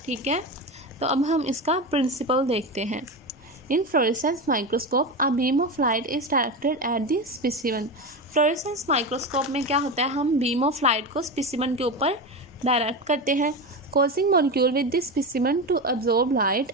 ठीक है, तो अब हम इसका प्रिंसिपल देखते हैं। In fluorescence microscope, a beam of light is directed at the specimen. Fluorescence microscope में क्या होता है, हम बीम ऑफ लाइट को स्पेसिमेन के ऊपर डायरेक्ट करते हैं, causing molecule with this specimen to absorb light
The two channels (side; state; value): both; normal; correlation 0.20